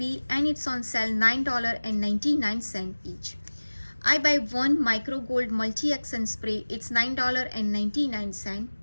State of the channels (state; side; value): inverted; both; correlation -1.00